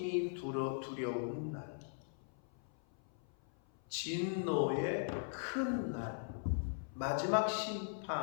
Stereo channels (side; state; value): right; silent; 51 dB below the other